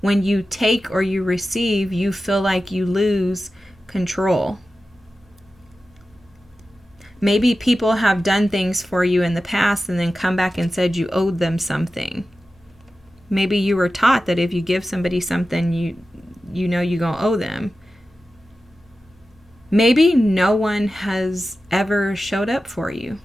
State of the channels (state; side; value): normal; both; correlation 0.94